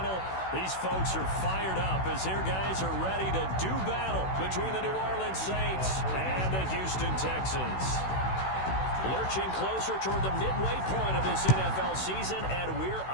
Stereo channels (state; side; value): late; right; 16 ms